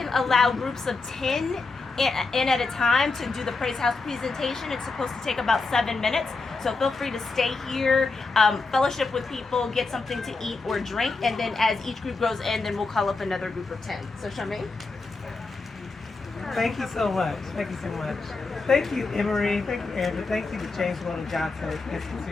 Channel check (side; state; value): right; quieter; 3.9 dB